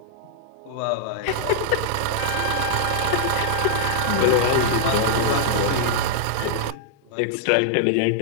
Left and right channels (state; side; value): different; both; correlation -0.01